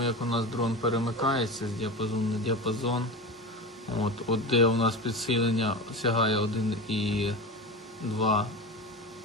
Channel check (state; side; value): normal; both; correlation 0.26